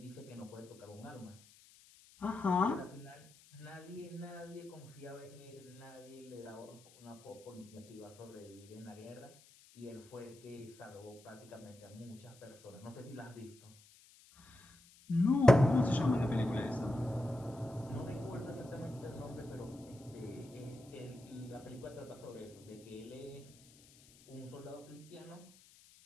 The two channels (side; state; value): left; noise; hiss, 24 dB below the sound